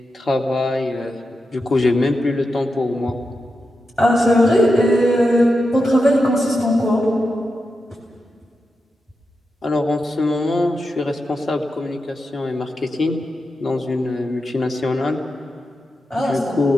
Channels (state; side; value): normal; both; correlation 0.88